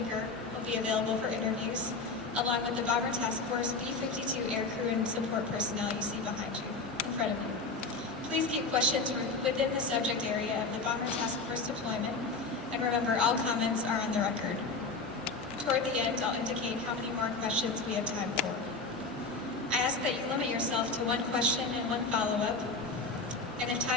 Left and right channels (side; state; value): right; quieter; 3.8 dB